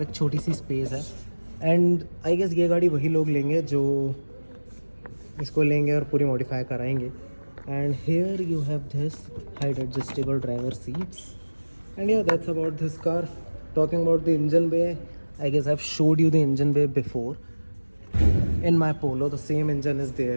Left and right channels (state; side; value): inverted; both; correlation -1.00